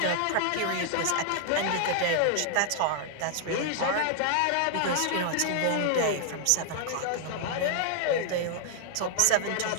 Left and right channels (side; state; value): both; different; correlation -0.01